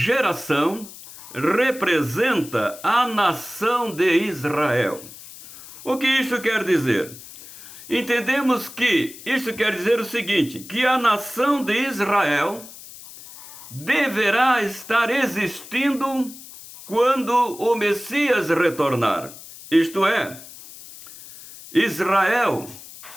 representa a nação de Israel. O que isso quer dizer? Entendemos que isso quer dizer o seguinte, que a nação de Israel deverá estar existindo quando o Messias retornar. Isto é, Israel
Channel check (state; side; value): noise; left; hiss, 17 dB below the sound